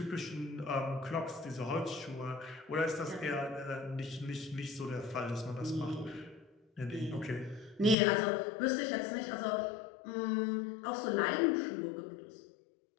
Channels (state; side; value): drops out; right; at 8.0 s